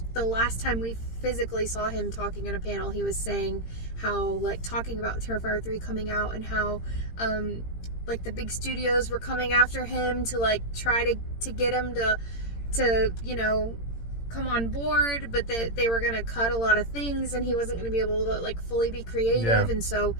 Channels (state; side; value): late; right; 17 ms